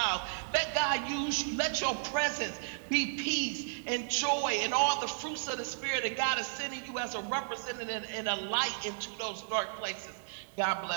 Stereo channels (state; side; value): silent; left; digital silence